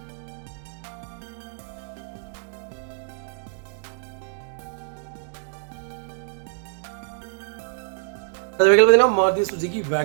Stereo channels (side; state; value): left; silent; digital silence